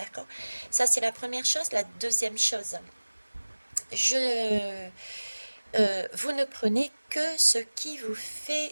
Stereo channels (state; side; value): inverted; both; correlation -1.00